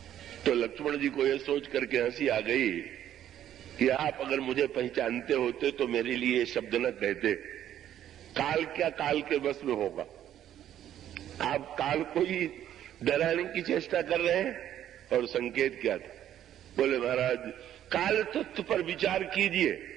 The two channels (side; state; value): left; quieter; 11.2 dB